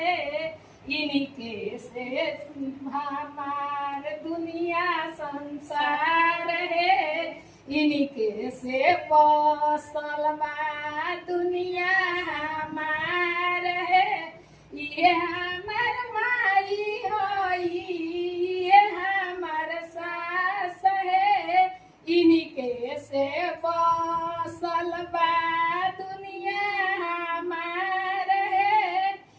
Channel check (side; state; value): both; identical; correlation 1.00